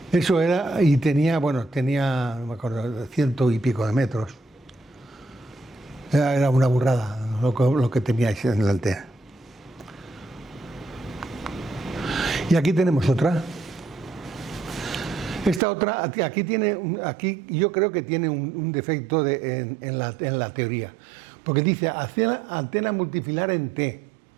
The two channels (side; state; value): left; drops out; at 15.6 s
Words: Eso era, y tenía, no me acuerdo, 100 y pico de metros. Era una burrada lo que teníais en la antena. Y aquí tenemos otra. Esta otra, aquí yo creo que tiene un defecto en la teoría, porque dice antena multifilar en T.